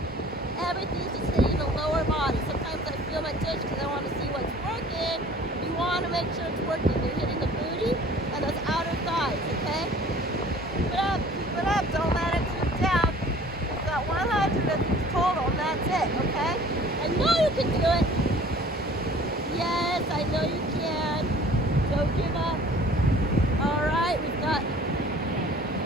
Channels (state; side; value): normal; both; correlation 0.49